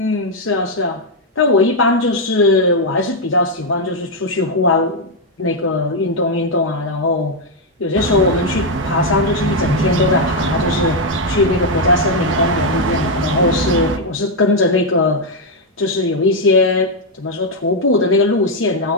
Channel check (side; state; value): both; normal; correlation 0.01